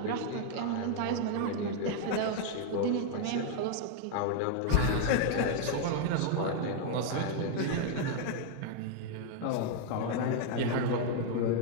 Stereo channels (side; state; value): both; different; correlation 0.00